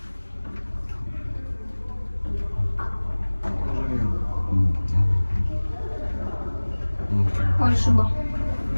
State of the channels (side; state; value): both; inverted; correlation -1.00